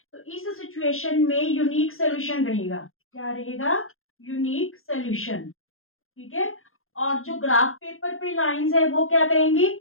तो इस सिचुएशन में यूनिक सोल्यूशन रहेगा। क्या रहेगा, यूनिक सोल्यूशन। ठीक है, और जो ग्राफ पेपर पे लाइंस है वो क्या करेंगी,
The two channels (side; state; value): right; late; 0.61 ms